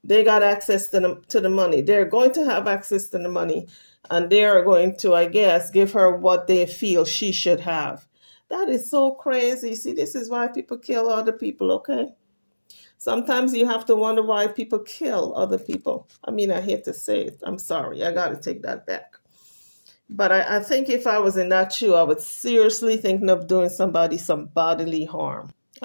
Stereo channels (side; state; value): both; inverted; correlation -1.00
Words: they got access to the money. They're going to have access to the money, and they are going to, I guess, give her what they feel she should have. That is so crazy. See, this is why people kill other people, okay? Sometimes you have to wonder why people kill other people. I mean, I hate to say it. I'm sorry. I got to take that back. But I think if I was in that shoe, I would seriously thinking of doing somebody some bodily harm.